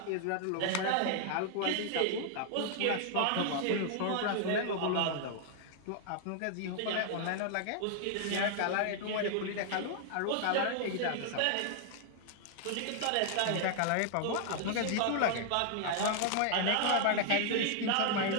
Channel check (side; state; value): both; different; correlation 0.00